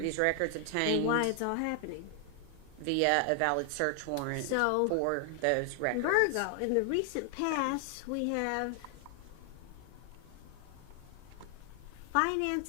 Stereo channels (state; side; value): different; both; correlation 0.00